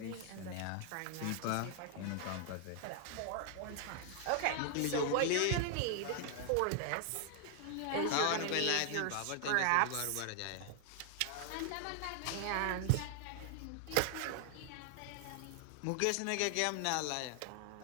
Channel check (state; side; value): different; both; correlation 0.00